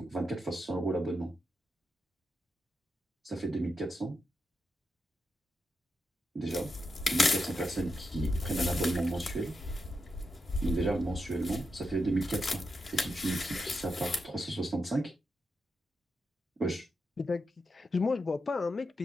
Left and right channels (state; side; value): normal; both; correlation 0.86